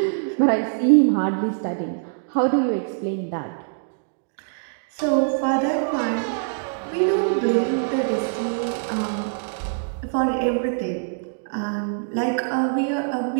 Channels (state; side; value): silent; left; digital silence